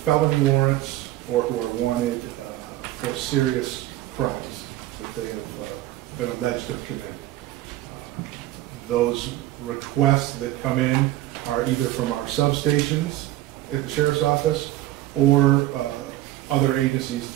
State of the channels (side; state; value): left; quieter; 15.4 dB